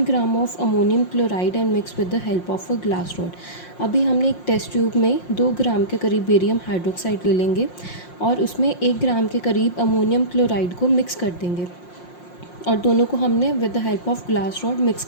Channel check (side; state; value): right; late; 5.6 ms